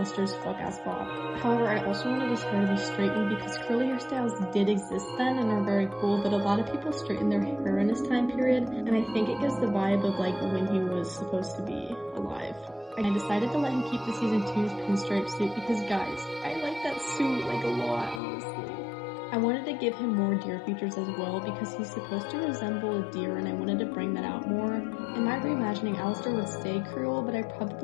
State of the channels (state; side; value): drops out; right; at 18.2 s